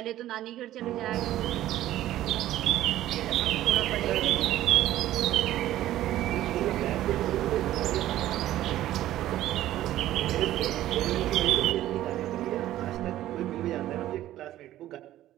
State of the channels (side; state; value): left; quieter; 13.9 dB